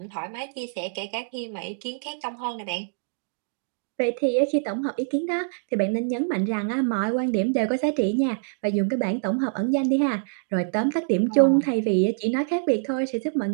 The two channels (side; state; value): left; silent; digital silence